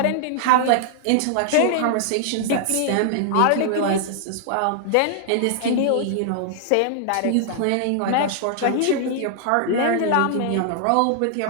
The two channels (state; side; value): different; both; correlation -0.01